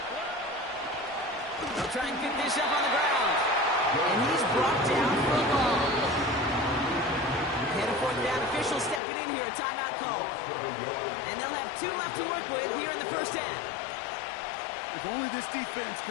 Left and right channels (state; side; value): drops out; right; at 9.0 s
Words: They'll try and pick this up on the ground. And he's brought down for a loss. And a 4th down, official stepping in here, a timeout call. And they'll have 2 left to work with here in the 1st half. If only this defense